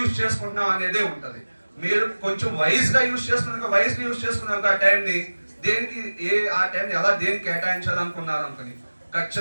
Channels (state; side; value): inverted; both; correlation -1.00